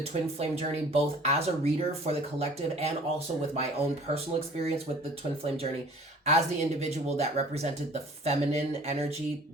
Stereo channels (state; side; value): normal; both; correlation 0.49